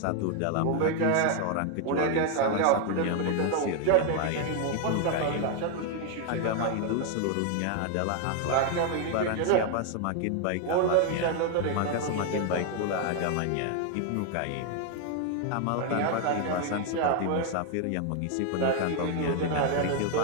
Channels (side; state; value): both; different; correlation 0.01